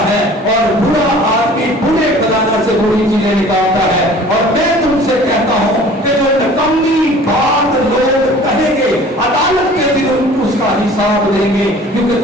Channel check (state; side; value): normal; both; correlation 0.47